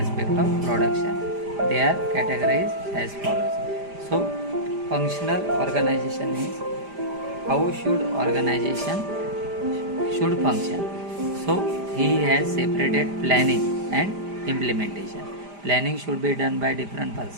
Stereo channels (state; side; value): late; left; 5.0 ms